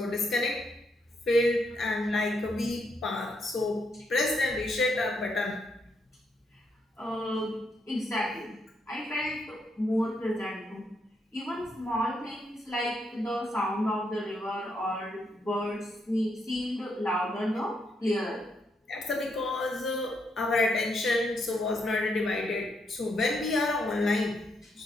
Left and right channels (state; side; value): normal; both; correlation 0.78